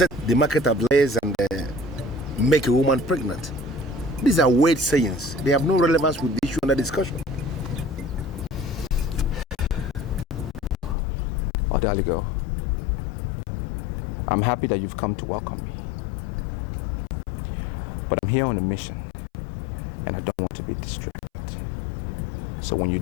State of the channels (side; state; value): right; drops out; at 11.0 s